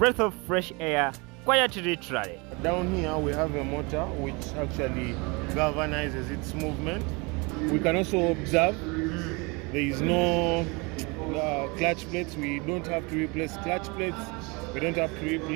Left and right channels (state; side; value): quieter; left; 28.3 dB